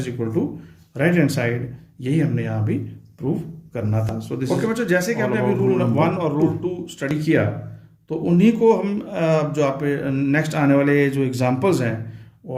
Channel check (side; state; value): both; identical; correlation 1.00